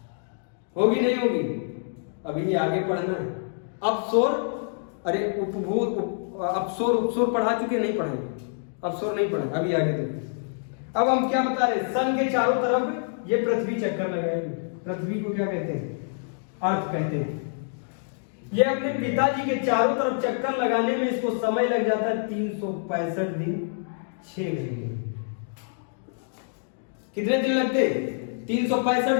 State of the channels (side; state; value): right; silent; digital silence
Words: होगी नहीं होगी। अभी आगे पढ़ना है। अपसोर, अरे अपसोर उपसोर पढ़ा चुके, नहीं पढ़ेंगे, अपसोर नहीं पढ़े, अभी आगे देखो। अब हम क्या बता रहे, सन के चारों तरफ ये पृथ्वी चक्कर लगाएगी। पृथ्वी को क्या कहते हैं, अर्थ कहते हैं। ये अपने पिताजी के चारों तरफ चक्कर लगाने में इसको समय लग जाता है 365 दिन 6 घंटे। कितने दिन लगते,